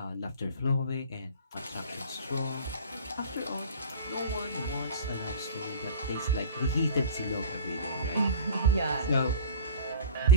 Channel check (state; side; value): inverted; both; correlation -0.38